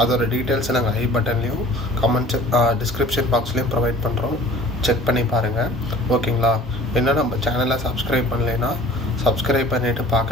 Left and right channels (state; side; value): normal; both; correlation 0.47